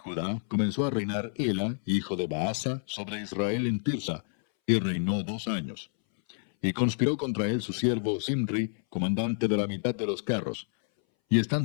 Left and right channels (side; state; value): right; silent; 59 dB below the other